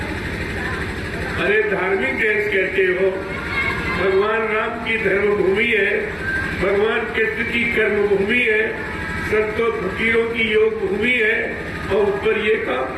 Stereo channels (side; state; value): left; noise; hum, 25 dB below the sound